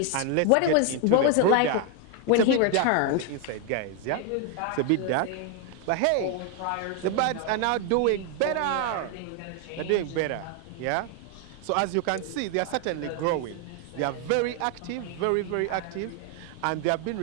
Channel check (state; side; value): different; both; correlation 0.01